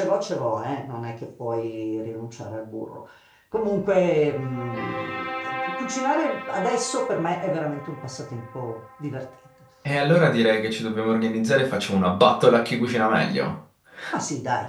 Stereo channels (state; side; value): identical; both; correlation 1.00